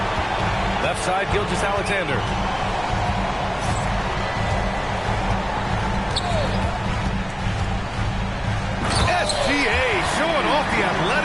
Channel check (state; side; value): identical; both; correlation 1.00